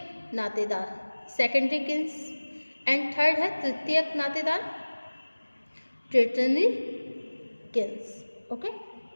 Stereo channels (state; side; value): inverted; both; correlation -1.00